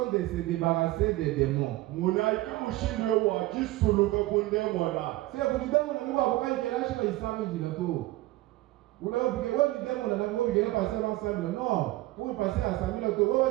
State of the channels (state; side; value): quieter; left; 18.0 dB